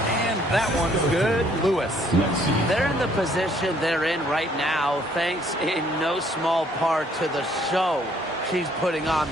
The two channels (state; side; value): normal; both; correlation 0.64